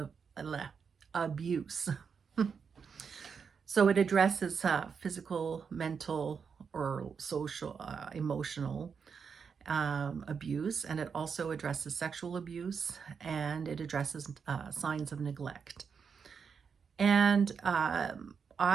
abuse. So it addresses physical, mental, or social, emotional abuse, and it also addresses sexual abuse, and it addresses signs of neglect. And I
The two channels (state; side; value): quieter; left; 6.2 dB